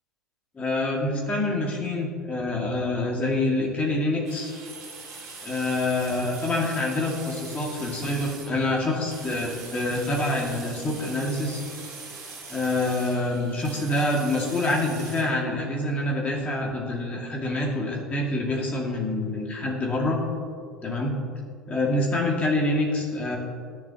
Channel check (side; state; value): both; normal; correlation 0.43